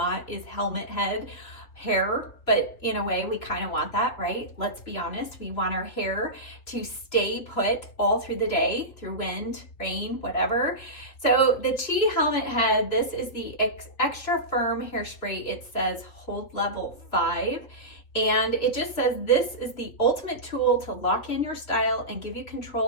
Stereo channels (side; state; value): right; late; 3.3 ms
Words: is helmet head hair, but in a way we kind of want that, right? Let's be honest. We want our hair to stay put all through the day, through wind, rain, whatever. So the Chic helmet head, this is the extra firm hairspray. It says hold level 5. And it just says this is the ultimate tool to lock in your style and give you